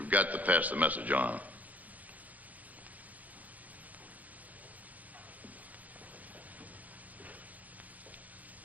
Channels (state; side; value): late; left; 0.077 ms